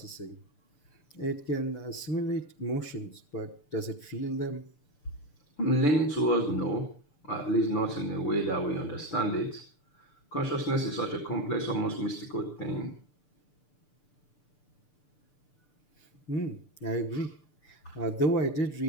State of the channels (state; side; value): late; right; 6.8 ms